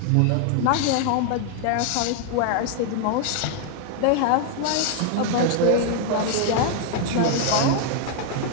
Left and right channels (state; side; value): different; both; correlation 0.00